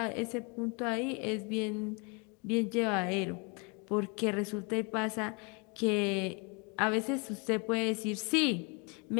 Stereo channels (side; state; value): right; quieter; 32.3 dB